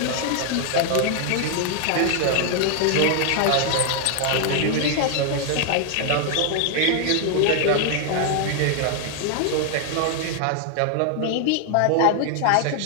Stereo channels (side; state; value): both; different; correlation 0.00